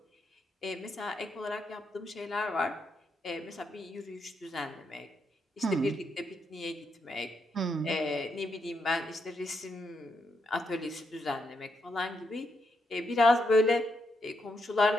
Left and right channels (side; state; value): both; normal; correlation 0.80